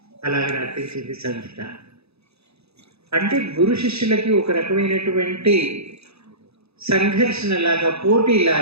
అలాగే నర్తించింది సంగీత. అంటే గురు శిష్యులకి ఒక రకమైనటువంటి సంఘర్షణలాగా,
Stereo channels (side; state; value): left; late; 0.79 ms